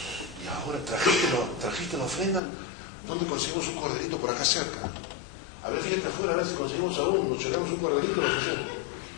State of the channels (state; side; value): drops out; right; at 2.4 s